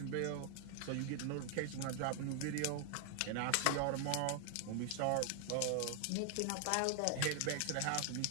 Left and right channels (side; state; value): both; different; correlation 0.00